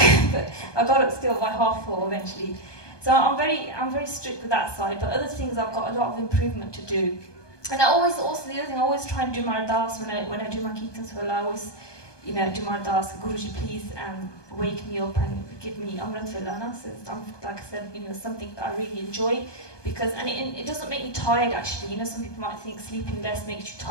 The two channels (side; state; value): right; late; 1.2 ms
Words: I got up still by 4:30 eventually. So I'm very strict with that side. But other things, I've got a lot of improvement to do. And I always, also the other thing, I always try and do my ardas when I do my kirtans. Well, I always, you know, do my ardas. Guruji, please wake me up and give me Amrit Villana. So like I said, you know, something that I really enjoy, because it doesn't make me tired actually. You know, some people might think sleeping less makes you